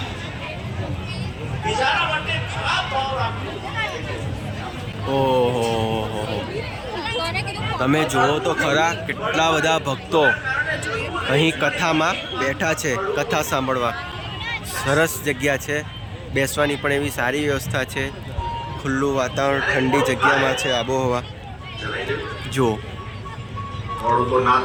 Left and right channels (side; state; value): both; identical; correlation 1.00